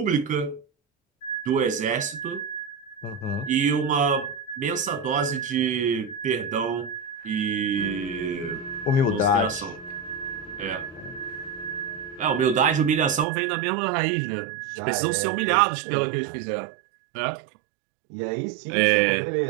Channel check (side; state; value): left; drops out; at 13.2 s